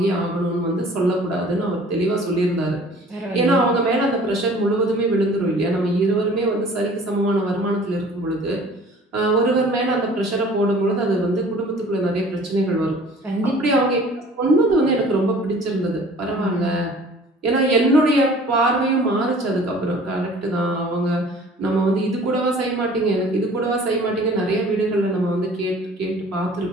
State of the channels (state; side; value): normal; both; correlation 0.49